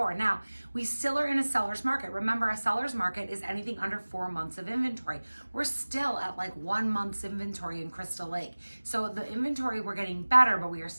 Now, we still are in a seller's market. Remember, a seller's market is anything under 4 months of inventory. We're still at like 1 month's inventory in Crystal Lake. So the inventory, we're getting better, but we are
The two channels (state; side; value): inverted; both; correlation -1.00